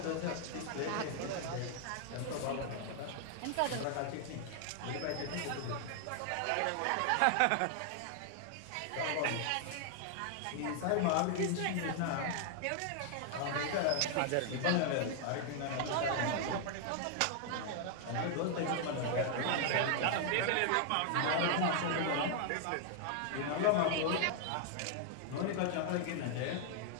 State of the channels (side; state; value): both; different; correlation 0.00